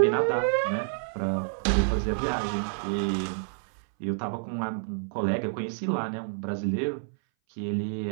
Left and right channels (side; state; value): left; silent; 59 dB below the other